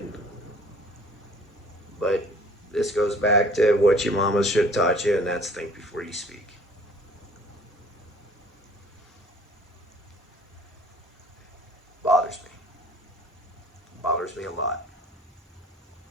But this goes back to what your mama should have taught you, and that's think before you speak. Bothers me. Bothers me a lot.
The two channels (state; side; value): normal; both; correlation 0.52